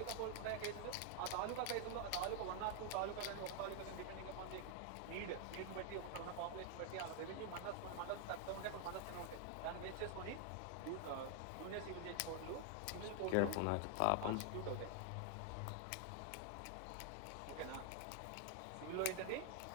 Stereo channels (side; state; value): both; different; correlation 0.00